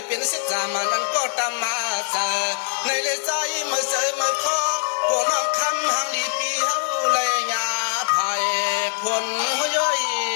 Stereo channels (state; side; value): silent; right; 58 dB below the other